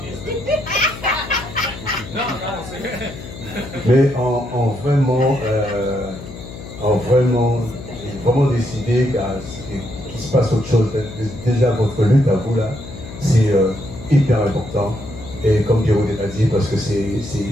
Non, c'est. Mais en vraiment décidé qu'il se passe autre chose. Déjà, votre lutte à vous là, c'est hyper important. Et comme Pierrot l'a dit, parce que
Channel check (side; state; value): left; noise; hum, 13 dB below the sound